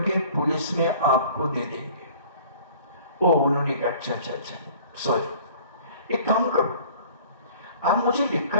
पुलिस में आपको दे देंगे। ओ, उन्होंने कहा, अच्छा अच्छा अच्छा, सॉरी, एक काम करो, आप मुझे लिख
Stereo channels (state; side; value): inverted; both; correlation -0.48